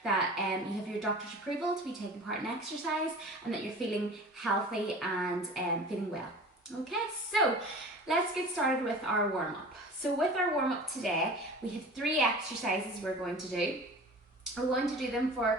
that you have your doctor's approval to be taking part in exercise and that you're feeling healthy and feeling well. Okay, so let's get started with our warm-up. So with our warm-up today, we have 3 exercises we're going to do. We're going to do them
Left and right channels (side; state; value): both; normal; correlation 0.39